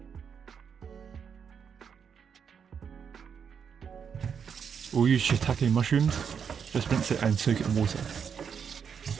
We'll use shiitake mushrooms, just rinse it and soak it in water.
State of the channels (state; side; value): quieter; left; 7.0 dB